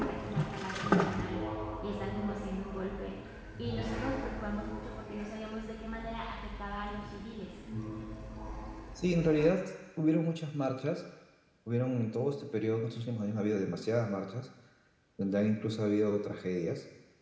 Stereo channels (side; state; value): both; identical; correlation 1.00